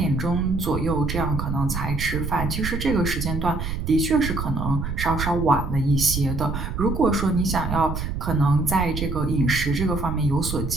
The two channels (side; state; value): right; noise; rumble, 4 dB below the sound